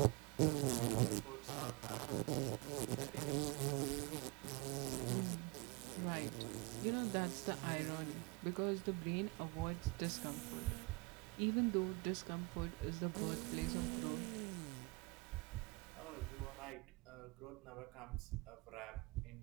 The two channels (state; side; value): quieter; left; 27.2 dB